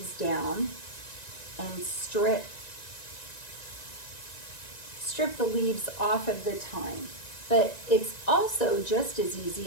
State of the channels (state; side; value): late; right; 1.9 ms